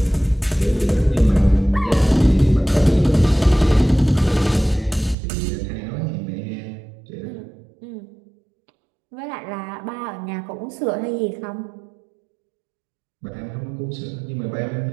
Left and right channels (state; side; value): drops out; left; at 5.2 s